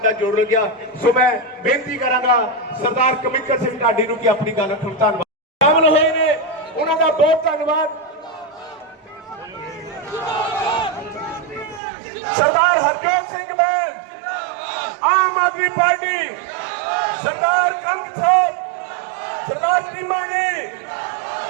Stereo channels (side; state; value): left; drops out; at 11.8 s